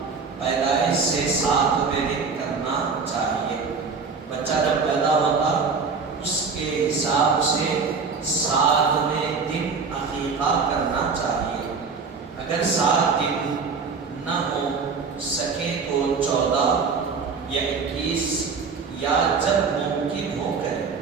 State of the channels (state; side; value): quieter; left; 5.1 dB